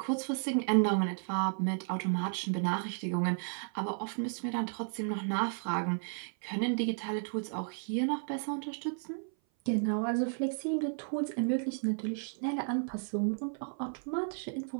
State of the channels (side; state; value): left; silent; 55 dB below the other